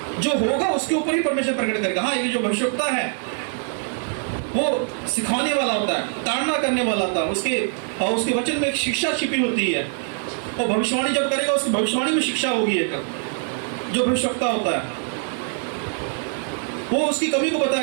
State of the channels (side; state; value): left; silent; 56 dB below the other